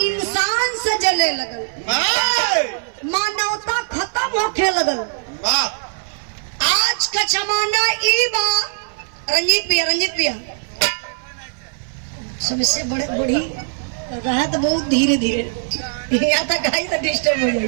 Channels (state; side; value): silent; left; 58 dB below the other